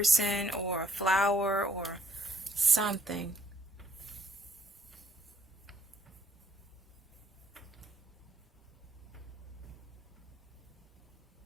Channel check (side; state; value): both; normal; correlation 0.67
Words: or a flower or something.